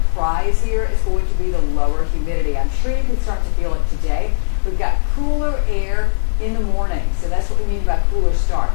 prize here is going to be the lower humidity. I'm sure you can start to feel it today. We've got cooler air in the morning, so that's what we mean by cooler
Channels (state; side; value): silent; right; digital silence